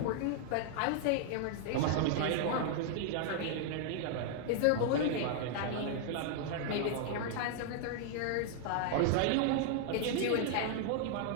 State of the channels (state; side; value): different; both; correlation 0.00